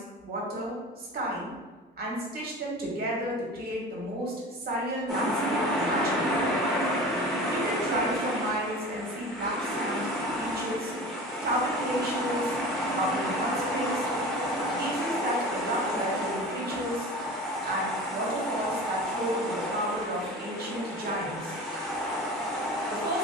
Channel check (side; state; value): both; normal; correlation 0.35